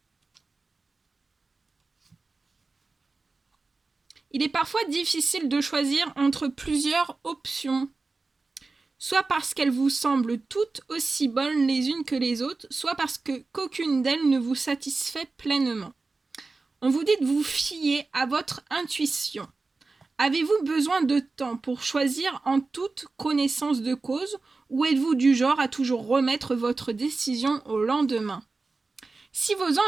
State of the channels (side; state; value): left; quieter; 3.8 dB